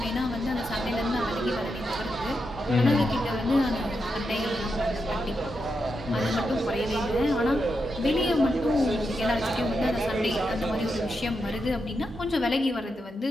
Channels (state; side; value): normal; both; correlation 0.85